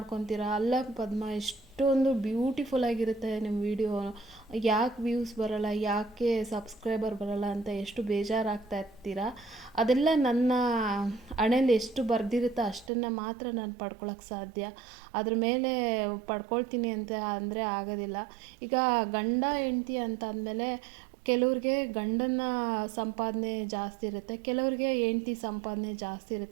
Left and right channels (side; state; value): left; drops out; at 12.9 s